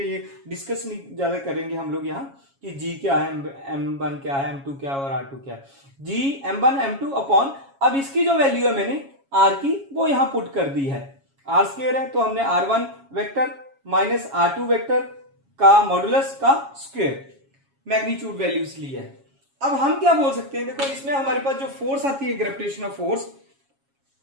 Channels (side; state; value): left; late; 7.3 ms